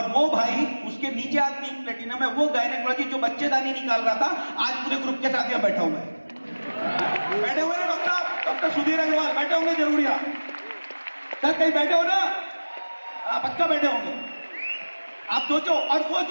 वो भाई, उसके नीचे आज 3 प्लेटिनम है, वो गायनेकोलॉजी जो बच्चेदानी निकाल रहा था, आज पूरे ग्रुप के साथ यहाँ बैठा हुआ है। बैठे हुए ना डॉक्टर सुधीर अग्रवाल बैठे होंगे जरूर यहाँ। सर कहीं बैठे हो ना? पक्का बैठे होंगे। आप सोचो। और वो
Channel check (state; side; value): inverted; both; correlation -1.00